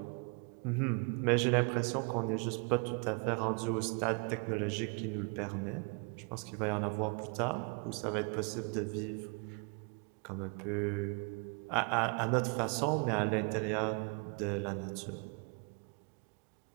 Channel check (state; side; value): quieter; left; 35.7 dB